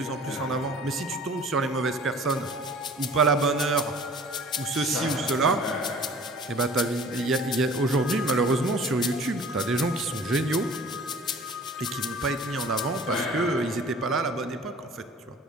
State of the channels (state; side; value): normal; both; correlation 0.47